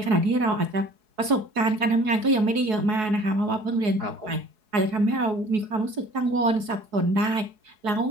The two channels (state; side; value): late; left; 4.7 ms